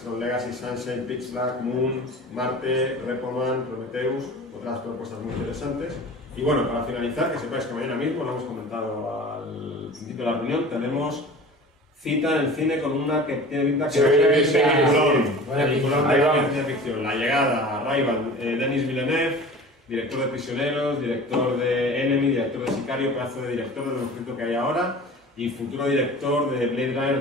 Tron Legacy, Sunshine, Pitch Black, Moon, Marte, Repo Man, Prometheus, otras propuestas muy interesantes. Y bueno, para finalizar, que sepáis que mañana mismo, lo hemos comentado al principio de la reunión, tenemos cita en el cine con una que tiene pinta que peliculón de ciencia ficción. La Llegada, Arrival, Denis Villeneuve, director de Prisioneros, director de Enemy, director de Sicario, pedazo de director de lo mejorito que hay ahora, y futuro director de Blade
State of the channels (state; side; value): normal; both; correlation 0.39